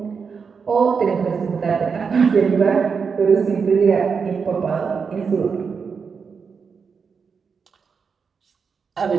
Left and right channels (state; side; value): quieter; left; 5.7 dB